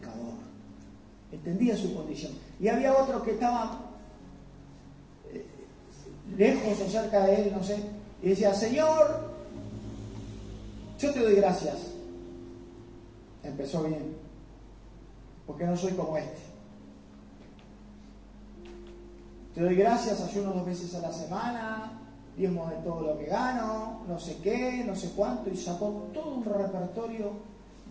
Entendía su condición. Y había otro que estaba lejos o cerca de él, no sé, y decía, Señor, yo te doy gracias. Empezó bien, porque no soy como este. Te doy gracias, ayuno 2 veces a la semana, diezmo de todo lo que gano, no sé qué, no sé cuánto, y sacó todo un repertorio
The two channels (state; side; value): identical; both; correlation 1.00